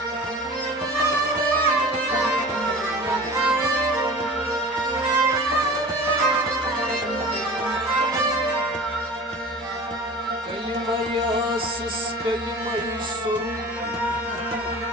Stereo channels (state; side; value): normal; both; correlation 0.39